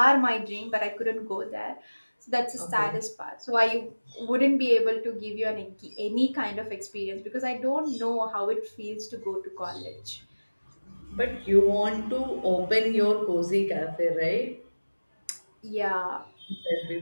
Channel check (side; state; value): both; inverted; correlation -1.00